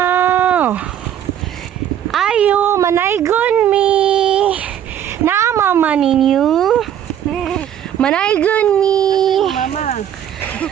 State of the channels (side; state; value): left; quieter; 10.2 dB